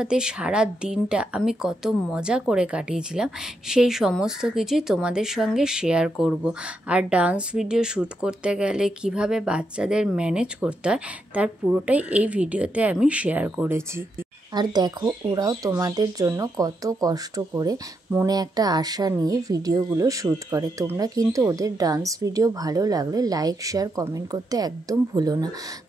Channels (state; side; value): normal; both; correlation 0.82